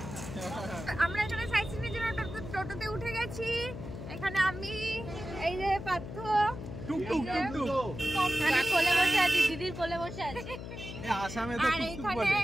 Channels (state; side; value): noise; left; hum, 9 dB below the sound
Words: আমরা এখানে সাইট সিনের জন্য টোটোতে উঠে গেছি। এখানে আমি, এই যে পার্থ, কোলে বসে আছি, দিদির কোলে বসে আছি, আর এখানে